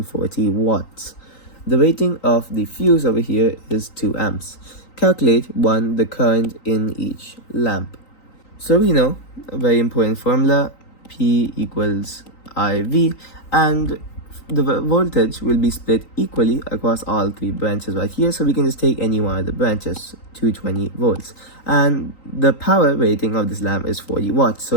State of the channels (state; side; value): late; right; 3.9 ms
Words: 40 watts. The rating of the fuse over here is 2 amps. Calculate the current in each lamp. So we know a very important formula, P equals IV, and the voltage will be split equally across all 3 branches right here, so we can just take any one of the branches, 220 volts. And the power rating of this lamp is 40 watts, so